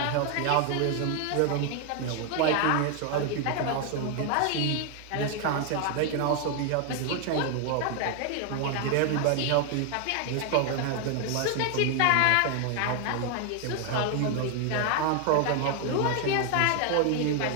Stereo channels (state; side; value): different; both; correlation 0.00